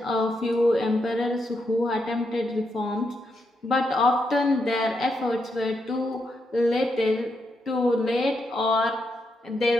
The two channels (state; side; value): normal; both; correlation 0.81